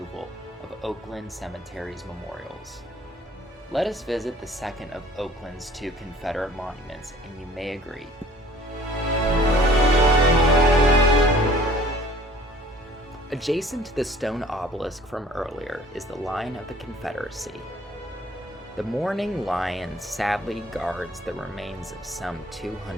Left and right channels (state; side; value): normal; both; correlation 0.53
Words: of Oakland Cemetery's memorials. Let us visit the second of Oakland's 2 Confederate monuments, and you may agree. Adjacent to the stone obelisk from earlier is the Lion of the Confederacy. The mourning lion sadly guards the remains of some